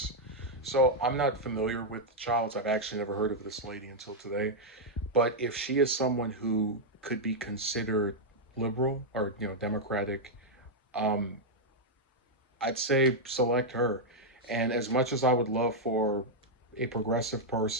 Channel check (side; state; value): both; normal; correlation -0.03